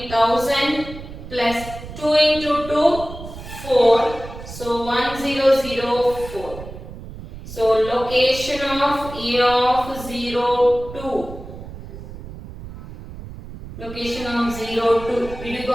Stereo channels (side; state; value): right; noise; rumble, 13 dB below the sound